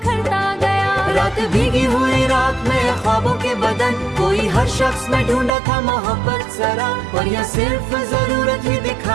गया। रात भीगी हुई रात में ख्वाबों के बदन, कोई हर शख्स में ढूंढा था मोहब्बत जरा, और यह सिर्फ जरूरत ही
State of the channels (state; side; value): drops out; left; at 5.5 s